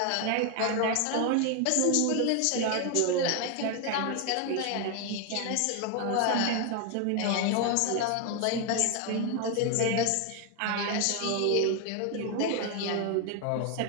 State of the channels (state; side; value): different; both; correlation 0.01